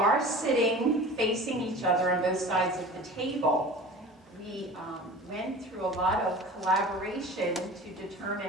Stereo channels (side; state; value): both; normal; correlation 0.38